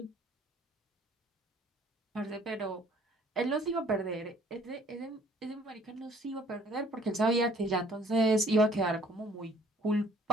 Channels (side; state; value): both; normal; correlation 0.58